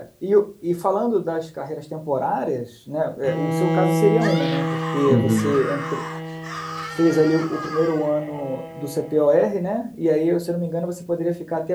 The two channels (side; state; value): both; identical; correlation 1.00